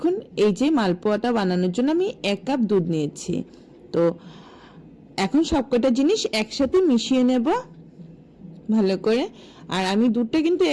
এই যে মালপোয়াটা বানানোর জন্য আমি 1 কাপ দুধ নিয়েছি। তো এখন সবকটা জিনিস একসাথে মিশিয়ে নেব ভালো করে। আর আমি দুধটা কিন্তু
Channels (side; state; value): both; identical; correlation 1.00